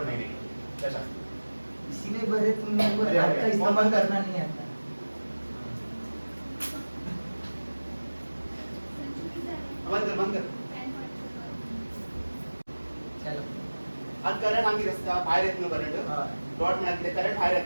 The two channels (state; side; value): inverted; both; correlation -1.00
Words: magnetic field कशा इसीलिए बरे तुम लोगों को अरे, हाथ अरे, का इस्तेमाल करना नहीं आता बंद कर चलो आज करंट आंगी रस्ता बाहेर येत नो करंट हाँ डॉट मिळाले करंट बाहेर